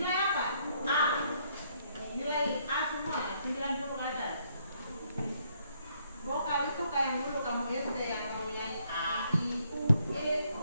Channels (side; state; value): both; inverted; correlation -0.70